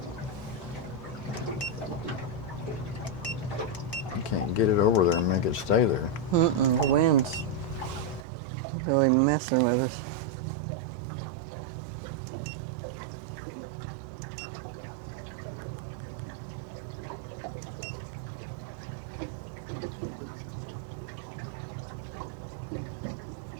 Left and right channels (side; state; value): left; drops out; at 8.2 s